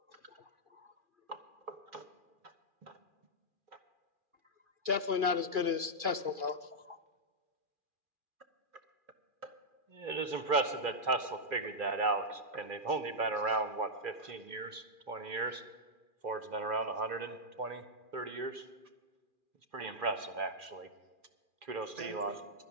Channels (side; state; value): left; late; 2.4 ms